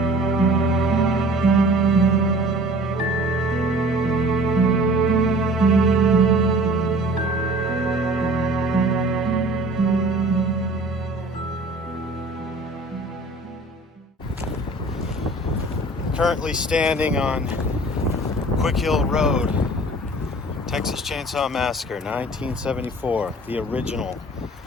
Currently standing on Quick Hill Road, Texas Chainsaw Massacre, 1974, the original.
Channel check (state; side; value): normal; both; correlation 0.46